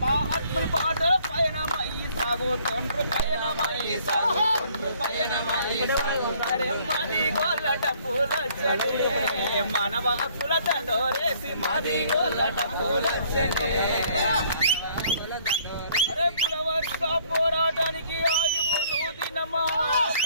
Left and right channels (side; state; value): both; inverted; correlation -0.61